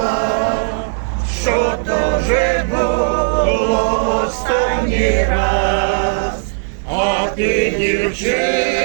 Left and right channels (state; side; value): silent; left; digital silence